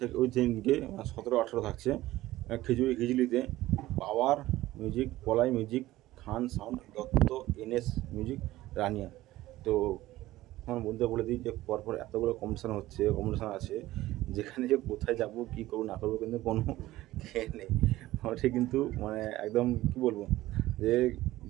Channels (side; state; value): left; quieter; 16.5 dB